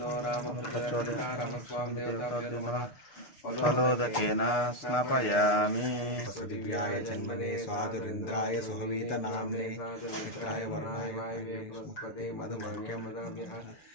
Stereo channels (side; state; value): right; late; 6.6 ms